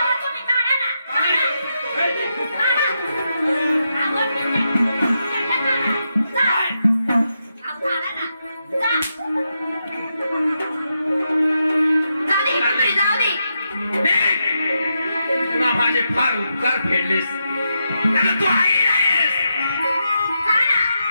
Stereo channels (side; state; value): both; inverted; correlation -0.85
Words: पुन्हा माझे फार उपकार फेडलेस. तू आई नाहीस.